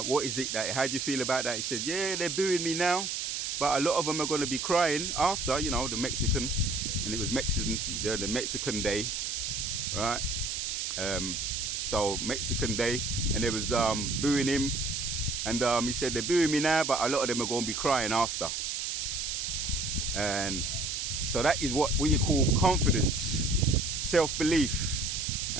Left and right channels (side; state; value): right; noise; hiss, 2 dB below the sound